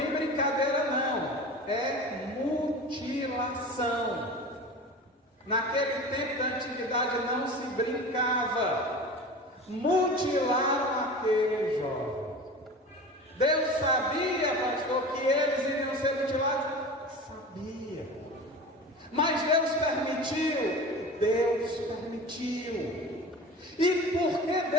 brincadeira não. É mutilação. Naquele tempo da antiguidade não se brincava. Mutilaram aquele jovem. Deus sabia, pastor, que eles iriam ser mutilados? Sabia. Mas Deus permitiu? Deus permitiu. E por que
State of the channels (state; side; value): normal; both; correlation 0.34